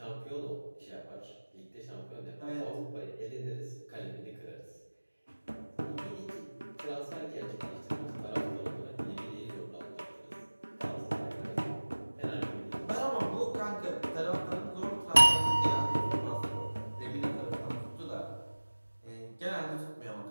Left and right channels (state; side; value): inverted; both; correlation -1.00